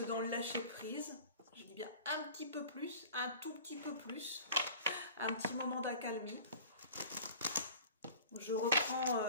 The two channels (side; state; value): both; inverted; correlation -0.42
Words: dans le lâcher prise. Je dis bien un petit peu plus, un tout petit peu plus, un petit moment d'accalmie. Je